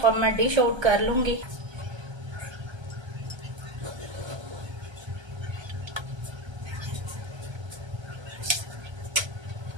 अब मैं डिश आउट कर लूंगी।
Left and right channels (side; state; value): left; late; 1.3 ms